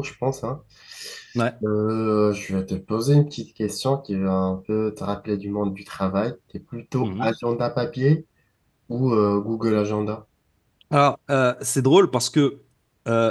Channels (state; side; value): identical; both; correlation 1.00